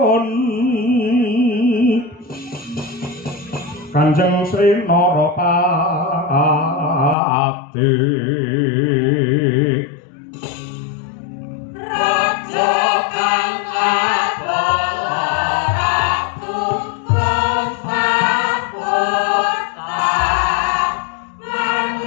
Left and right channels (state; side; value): drops out; right; at 7.2 s